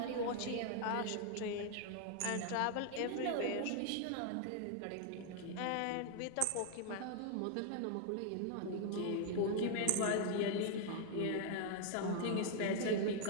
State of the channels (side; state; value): both; different; correlation 0.00